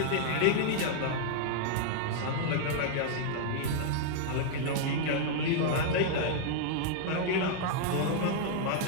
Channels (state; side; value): different; both; correlation -0.01